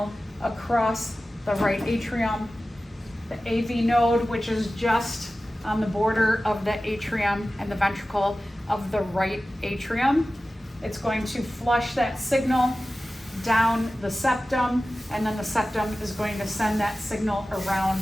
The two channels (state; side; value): normal; both; correlation 0.95